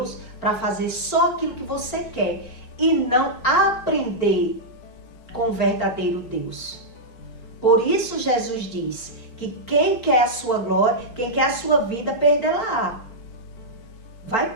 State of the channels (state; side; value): late; right; 4.3 ms